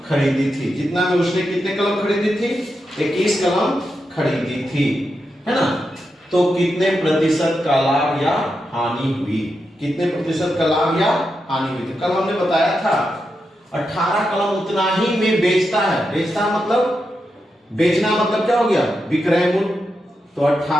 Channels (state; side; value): normal; both; correlation 0.86